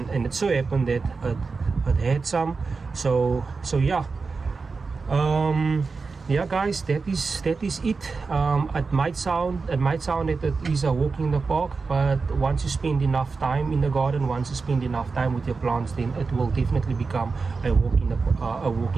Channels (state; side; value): quieter; left; 4.5 dB